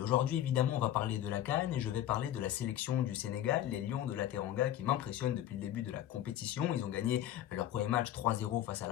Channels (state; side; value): quieter; right; 12.1 dB